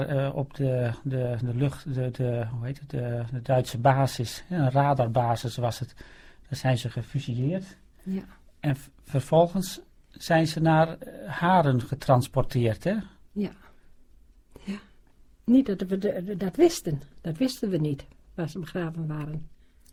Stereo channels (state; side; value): identical; both; correlation 1.00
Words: op de lucht, hoe heet het, de Duitse basis, een radarbasis was het, daar zijn ze gefusilleerd. Ja. En vervolgens zijn ze naar Haren getransporteerd, hè? Ja. Ja. Niet dat we dat wisten. Dat wisten we niet, waar ze begraven waren.